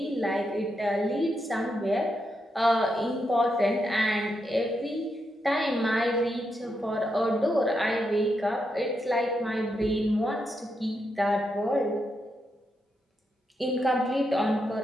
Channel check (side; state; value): both; normal; correlation 0.83